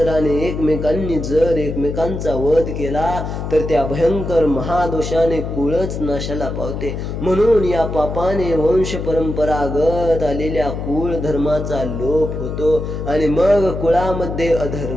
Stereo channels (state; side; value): noise; left; hum, 5 dB below the sound